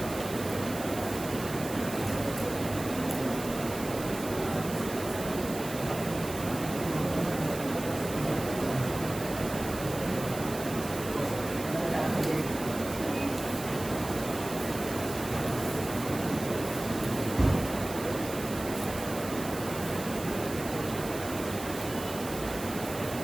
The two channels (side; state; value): right; noise; hiss, 11 dB below the sound